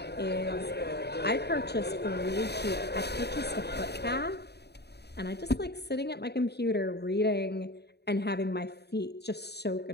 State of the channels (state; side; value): late; right; 0.48 ms